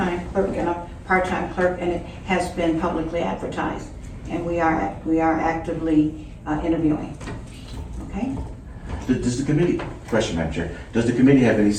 clerk and a part-time clerk, and it has been publicly advertised. And we are actively interviewing. Okay? Does the committee, question, Madam Chair, does the committee have any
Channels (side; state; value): both; identical; correlation 1.00